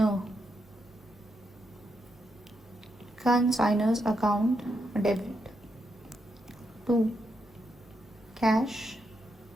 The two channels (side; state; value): both; normal; correlation 0.82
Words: consignor's account debit to cash